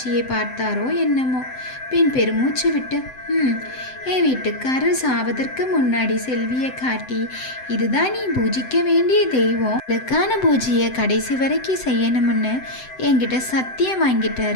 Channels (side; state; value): right; late; 7.8 ms